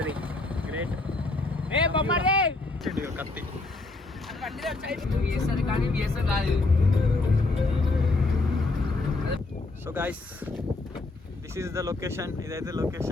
గ్రేట్ కత్తి. So guys this is the location. ఇదైతే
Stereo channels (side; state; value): right; quieter; 3.2 dB